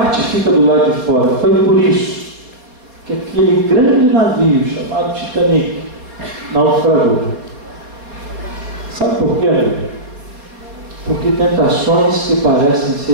fica do lado de fora. Foi por isso que aquele grande navio chamado Titanic naufragou. Sabe por quê? Porque tentações que parecem ser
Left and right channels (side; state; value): left; late; 4.1 ms